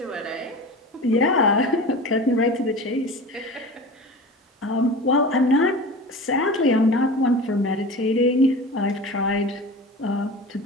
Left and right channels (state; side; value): normal; both; correlation 0.34